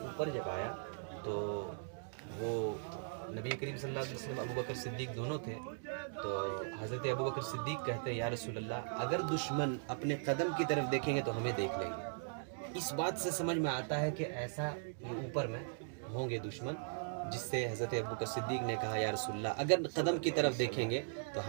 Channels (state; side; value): silent; left; digital silence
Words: اوپر جب آیا تو وہ نبی کریم صلی اللہ علیہ وسلم ابو بکر صدیق دونوں تھے، تو حضرت ابو بکر صدیق کہتے ہیں یا رسول اللہ اگر دشمن اپنے قدم کی طرف دیکھیں گے تو ہمیں دیکھ لیں گے. اس بات سے سمجھ میں آتا ہے کہ ایسا یہ اوپر میں ہوں گے دشمن، جس سے حضرت ابو بکر صدیق نے کہا یا رسول اللہ اگر قدم کی طرف دیکھیں گے تو